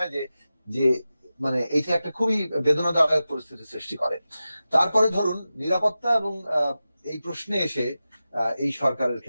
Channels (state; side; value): inverted; both; correlation -0.94